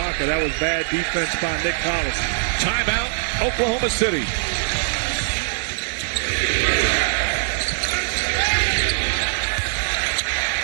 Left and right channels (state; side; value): silent; left; digital silence